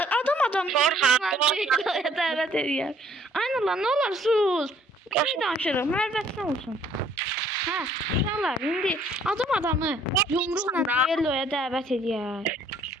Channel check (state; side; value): normal; both; correlation 0.61